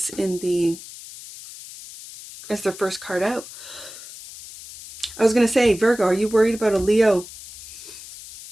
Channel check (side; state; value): left; noise; hiss, 15 dB below the sound